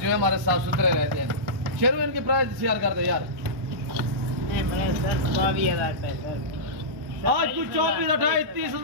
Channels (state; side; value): late; left; 1.1 ms